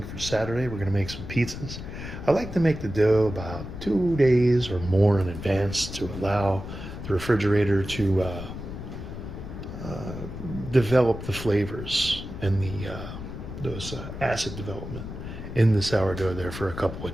for Saturday. We're going to make some pizzas. I like to make the dough about 2 days or more in advance to allow the refrigerator to develop the flavors and those acid development in the sourdough there for a couple of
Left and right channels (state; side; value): noise; left; rumble, 9 dB below the sound